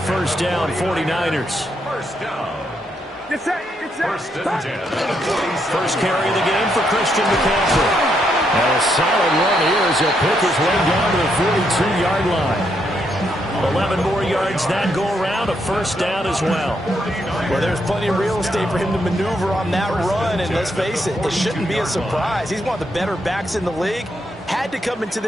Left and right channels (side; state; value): both; normal; correlation 0.77